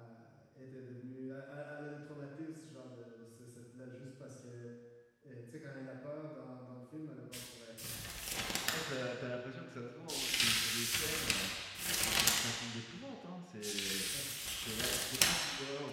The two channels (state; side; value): identical; both; correlation 1.00